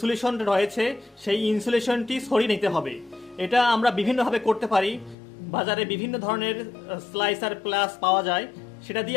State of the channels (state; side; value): drops out; right; at 5.2 s